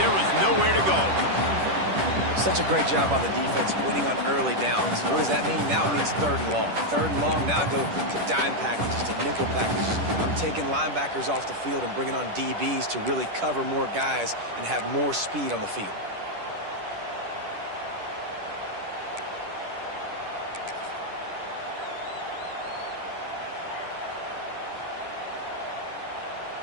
was nowhere to go. Such a great job on the defense winning on early downs. What does that mean? Now it means 3rd and long. 3rd and long, now I go to dime packages, to nickel packages. I'm taking linebackers off the field and bringing on DBs to really cover more guys and have more speed on the field.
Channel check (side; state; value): left; late; 10 ms